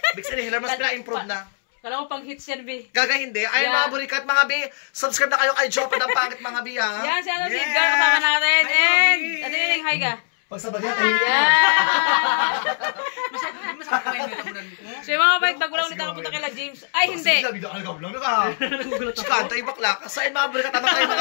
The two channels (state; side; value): silent; right; 64 dB below the other